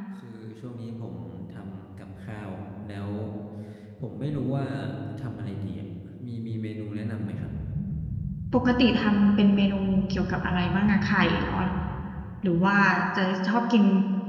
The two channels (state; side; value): identical; both; correlation 1.00